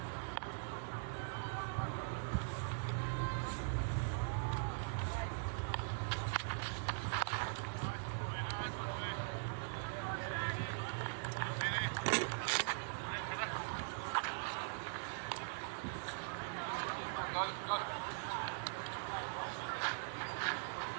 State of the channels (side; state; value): left; silent; digital silence